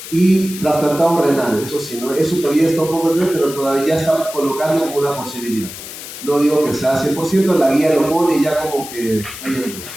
Y trasplantado renal, eso sí, ¿no? Eso todavía está un poco lejos, pero todavía está colocando como una posibilidad. No digo que sea 100%, la guía lo pone ya como que hay algo,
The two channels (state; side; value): noise; left; hiss, 12 dB below the sound